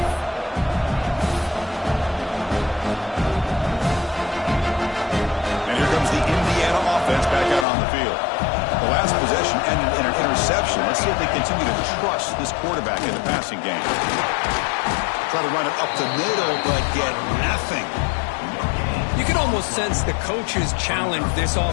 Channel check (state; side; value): drops out; right; at 7.7 s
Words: And here comes the Indiana offense back out on the field. The last possession ended in an interception. Let's see if they continue to trust this quarterback in the passing game. Try to run it up the middle, but get nothing. You can almost sense the coaches challenged this